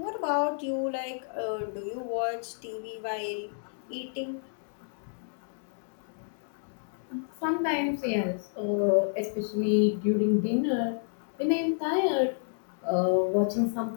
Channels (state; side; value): silent; right; digital silence